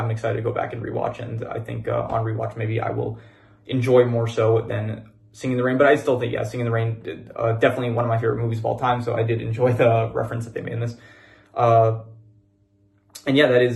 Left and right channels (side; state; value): both; identical; correlation 1.00